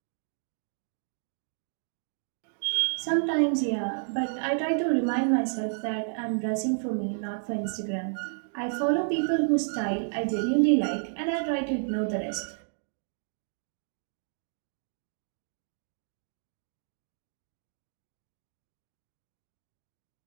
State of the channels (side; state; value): left; silent; digital silence